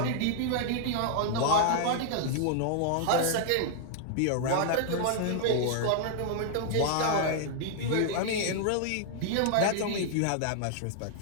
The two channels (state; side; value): different; both; correlation -0.01